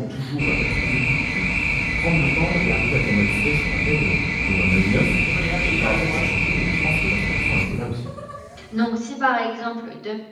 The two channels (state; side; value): identical; both; correlation 1.00